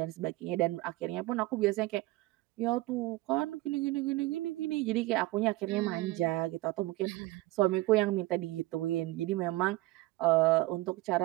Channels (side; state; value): left; quieter; 18.7 dB